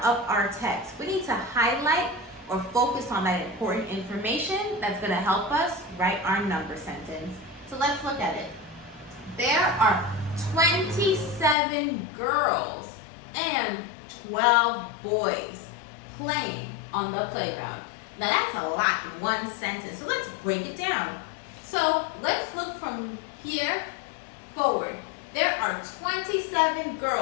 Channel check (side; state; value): right; drops out; at 11.6 s